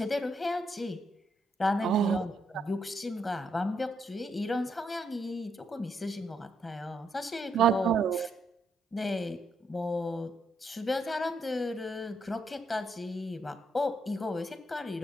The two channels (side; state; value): both; normal; correlation 0.77